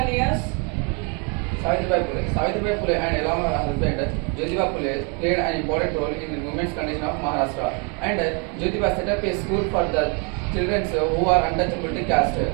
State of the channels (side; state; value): left; quieter; 34.9 dB